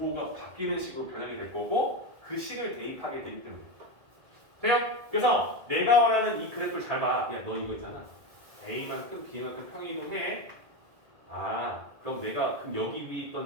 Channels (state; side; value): late; left; 1.9 ms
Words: 바뀌는 식으로 변형이 될 거고 그 식을 대입하게 되기 때문에 돼요? 그래서 내가 원하는 이 그래프를 잘 봐. 야, 너 이거 있잖아. A만큼 B만큼 평이동해. 그럼 내가 여기 위에